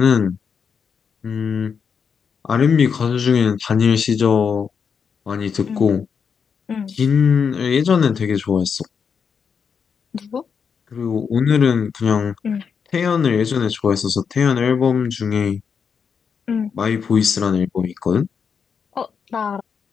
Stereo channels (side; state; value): right; quieter; 6.4 dB